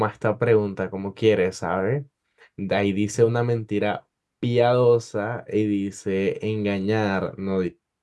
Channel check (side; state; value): both; identical; correlation 1.00